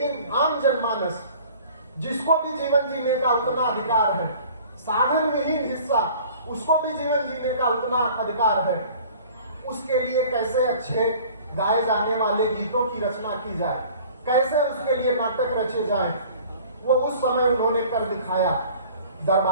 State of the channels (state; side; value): inverted; both; correlation -0.48